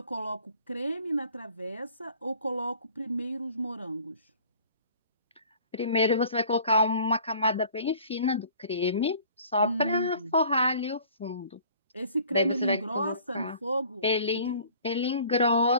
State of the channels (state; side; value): inverted; both; correlation -0.50